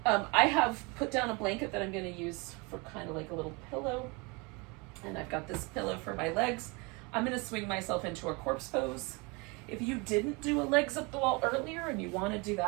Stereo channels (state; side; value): quieter; left; 28.5 dB